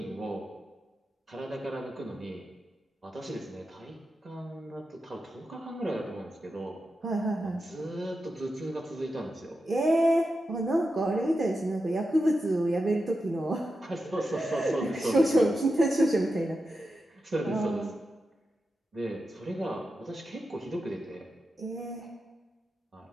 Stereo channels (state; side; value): normal; both; correlation 0.89